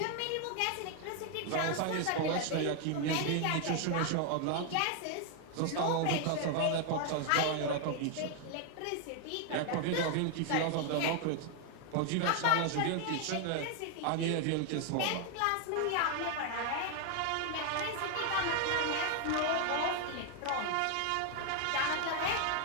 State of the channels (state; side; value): different; both; correlation 0.00